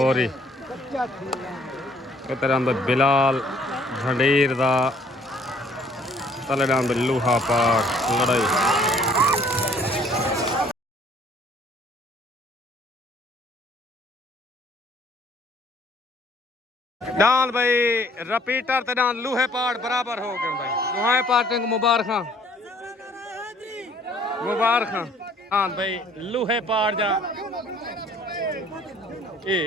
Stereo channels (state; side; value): normal; both; correlation 0.59